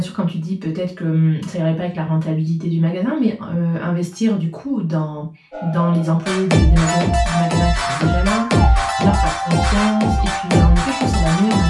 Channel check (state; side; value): identical; both; correlation 1.00